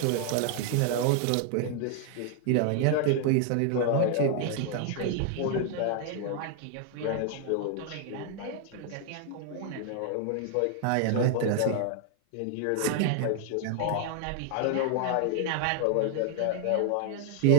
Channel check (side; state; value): both; different; correlation 0.00